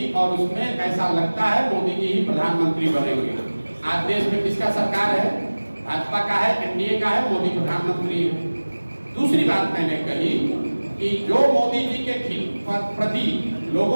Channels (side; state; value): both; inverted; correlation -1.00